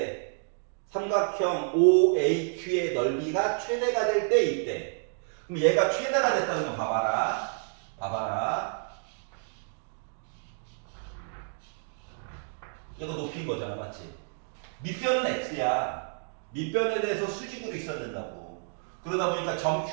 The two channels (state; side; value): silent; left; 58 dB below the other